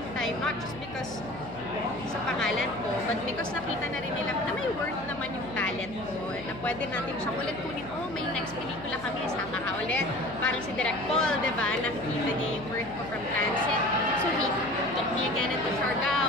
time, not just because sa pangalan ko, but because nakita na rin nila na may worth naman yung talent ko, na pwede natin siyang ulit kunin, may next pelikula kami, sama ka ulit. Parang si Direk Paul, diba? Nakikita niya yung worth ko from Transit. So he took me again into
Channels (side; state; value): left; noise; hum, 15 dB below the sound